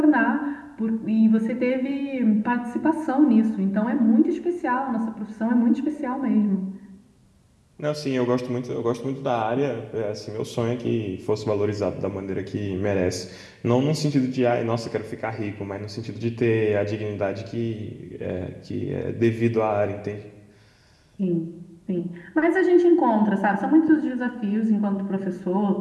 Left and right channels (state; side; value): identical; both; correlation 1.00